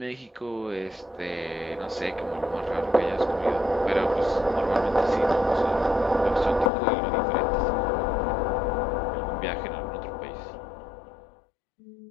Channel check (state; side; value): drops out; right; at 6.7 s